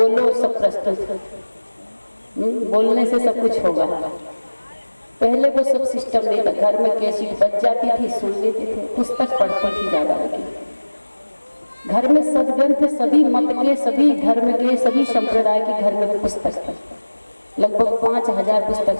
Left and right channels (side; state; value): both; inverted; correlation -1.00